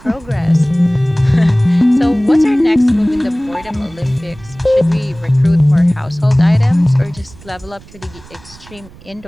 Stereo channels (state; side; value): noise; right; rumble, 22 dB below the sound